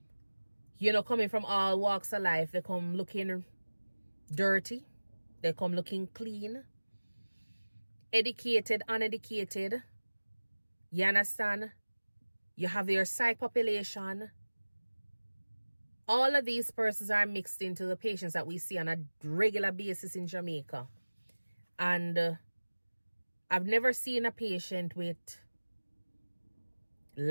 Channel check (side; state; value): both; inverted; correlation -1.00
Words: you know, coming from all walks of life, they come looking dirty. They come looking clean. Educated, uneducated. You understand? You have your psych population. All of these persons are mixed into the patients that we see on a regular basis in Jamaica. And I've never seen a patient with